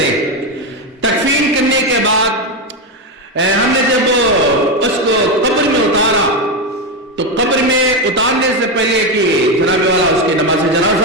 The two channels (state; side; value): normal; both; correlation 0.10